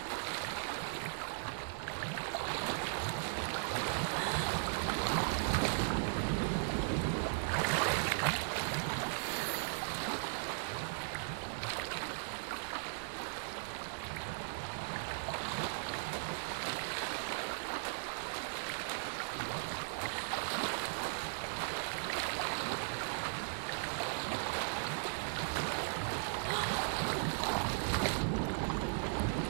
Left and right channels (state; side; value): silent; left; digital silence